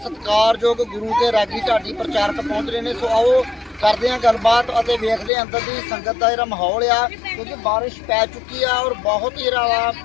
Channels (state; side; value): drops out; right; at 5.3 s